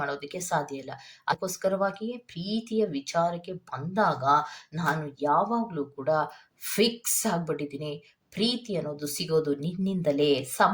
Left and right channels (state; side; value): identical; both; correlation 1.00